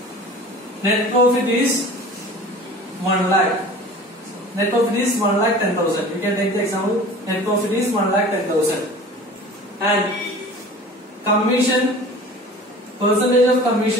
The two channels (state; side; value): normal; both; correlation 0.42